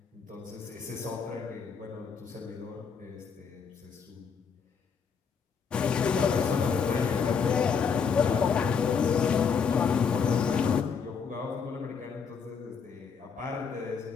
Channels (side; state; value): right; quieter; 6.2 dB